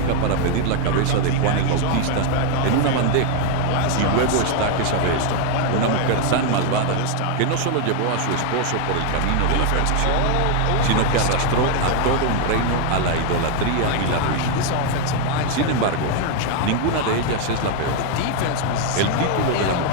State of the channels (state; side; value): different; both; correlation 0.00